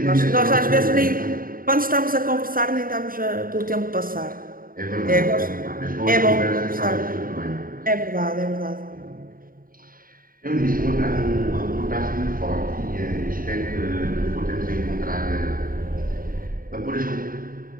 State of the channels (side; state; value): left; late; 0.41 ms